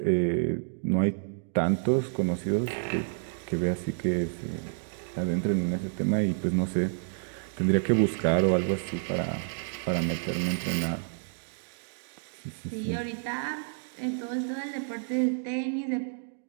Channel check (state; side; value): silent; left; digital silence